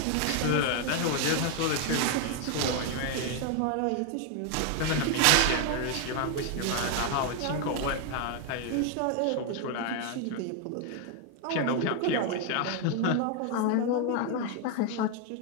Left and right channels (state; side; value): different; both; correlation 0.01